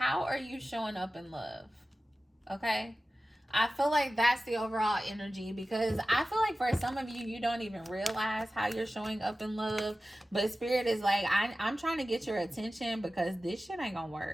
are you showing up in love? Okay? I feel like that's the overall energy because I feel like for some of you, you don't even realize how you're showing up in love. But Spirit is like, I'm trying to get your attention because this shit ain't going to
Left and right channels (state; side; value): normal; both; correlation 0.95